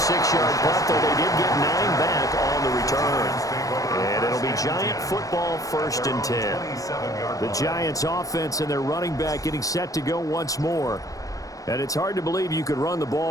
punt, though they did get 9 back on the return. And it'll be Giant football 1st and 10. The Giants offense and their running back getting set to go once more. And it's hard to believe you could run the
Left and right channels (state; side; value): late; right; 0.17 ms